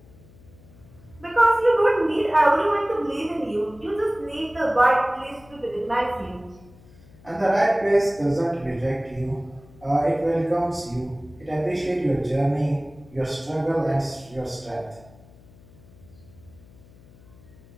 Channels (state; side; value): noise; left; hum, 24 dB below the sound